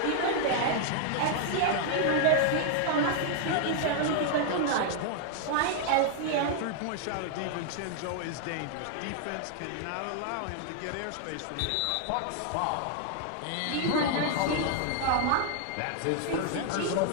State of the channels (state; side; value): different; both; correlation 0.00